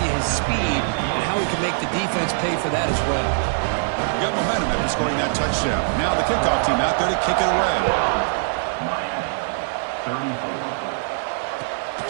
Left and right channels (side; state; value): left; silent; 57 dB below the other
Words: you his speed and how he can make the defense pay for that as well. Got momentum after scoring that touchdown. Now the kickoff team out there to kick it away.